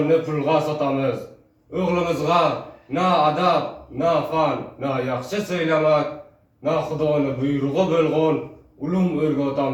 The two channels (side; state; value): both; identical; correlation 1.00